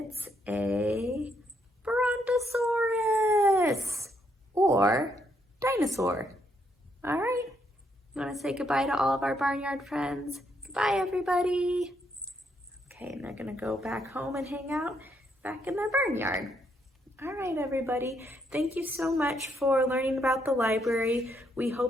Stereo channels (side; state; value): both; normal; correlation 0.75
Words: a brontosaurus or dinosaur. All right, you want to say goodbye to all of our barnyard friends? Goodbye, everybody. Okay, and they're gonna go back home and hang out back in their barnyard. All right, everybody. Thank you so much for learning about the library. We